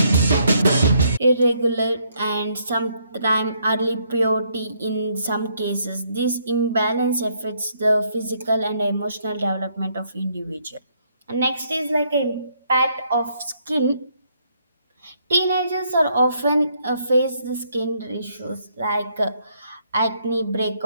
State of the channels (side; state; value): both; inverted; correlation -0.71